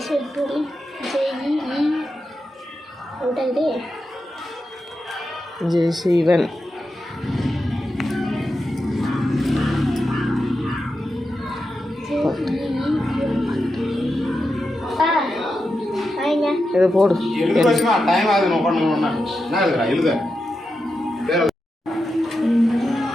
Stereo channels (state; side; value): normal; both; correlation 0.89